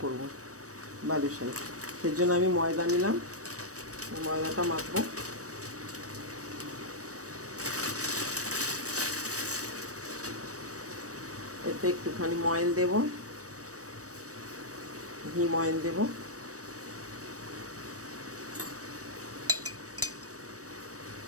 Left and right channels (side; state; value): left; late; 0.66 ms